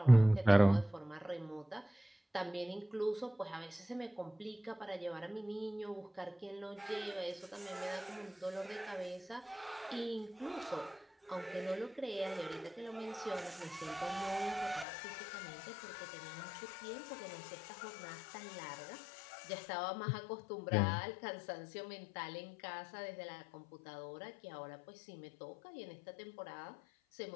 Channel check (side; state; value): right; drops out; at 14.9 s